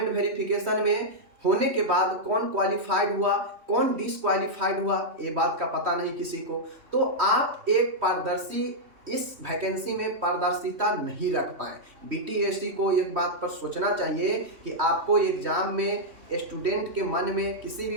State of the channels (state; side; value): late; left; 3.2 ms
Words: वेरिफिकेशन में होने के बाद कौन क्वालिफाइड हुआ कौन डिसक्वालिफाइड हुआ ये बात का पता नहीं किसी को, तो आप एक पारदर्शी इस वैकेंसी में पारदर्शिता नहीं रख पाए। बीटीएससी को एक बात पर सोचना चाहिए कि आपको एग्जाम में स्टूडेंट के मन में किसी भी